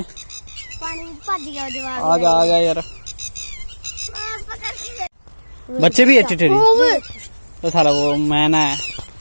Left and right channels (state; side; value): inverted; both; correlation -1.00